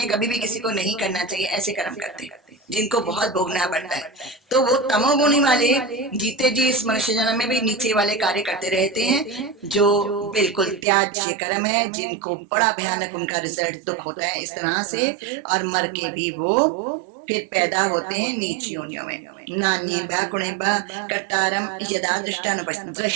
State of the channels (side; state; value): left; drops out; at 10.9 s